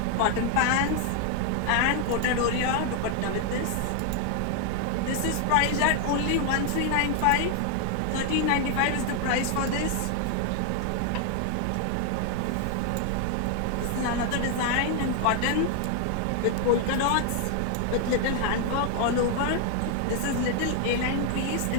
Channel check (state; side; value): different; both; correlation 0.00